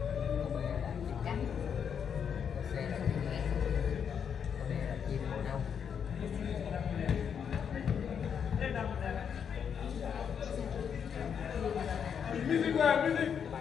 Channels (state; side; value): quieter; right; 7.5 dB